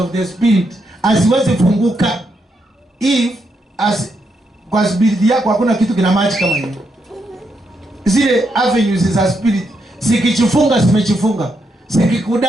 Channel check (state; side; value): normal; both; correlation 0.80